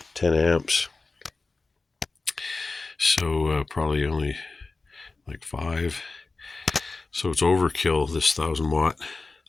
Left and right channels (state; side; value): quieter; right; 3.7 dB